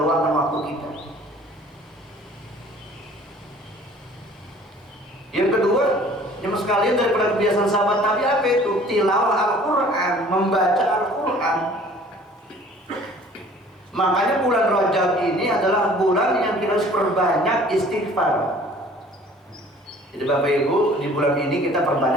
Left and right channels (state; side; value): normal; both; correlation 0.51